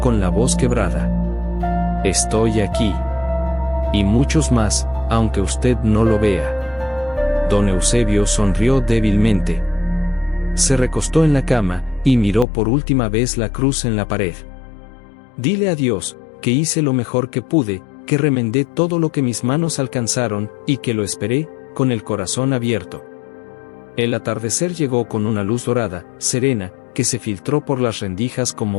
con la voz quebrada. «Estoy aquí. Y muchos más, aunque usted no lo vea». Don Eusebio sonrió débilmente. Se recostó en la cama, y miró por última vez la cruz en la pared. Dile a Dios, que hice lo mejor que pude, que remendé todo lo que mis manos alcanzaron, y que lo esperé, con el corazón abierto. El atardecer llegó con una luz dorada, serena, que se filtró por las rendijas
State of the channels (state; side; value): drops out; right; at 12.5 s